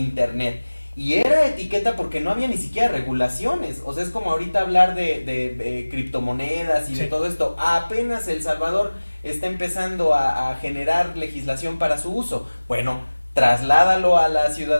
y era etiqueta porque no había ni siquiera regulaciones, o sea, es como ahorita hablar de criptomonedas y de todo esto. Apenas El Salvador está empezando a generar legislación para su uso. Bueno, trasládalo a la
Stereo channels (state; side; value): inverted; both; correlation -1.00